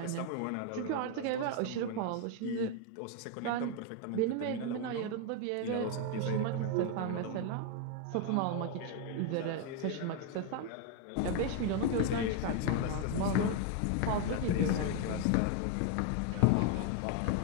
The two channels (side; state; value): both; different; correlation 0.01